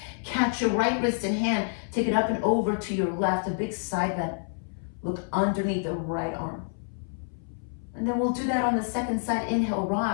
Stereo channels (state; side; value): silent; right; 59 dB below the other